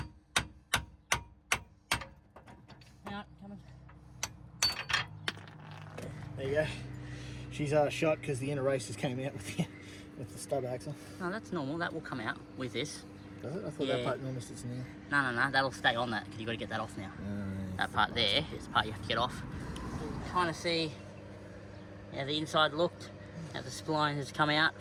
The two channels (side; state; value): both; identical; correlation 1.00